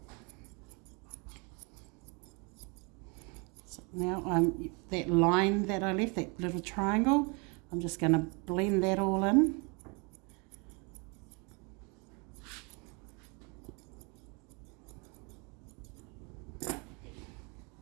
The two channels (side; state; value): left; quieter; 31.8 dB